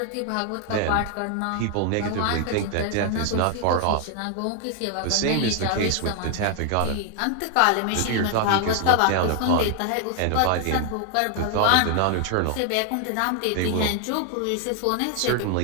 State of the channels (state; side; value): different; both; correlation 0.00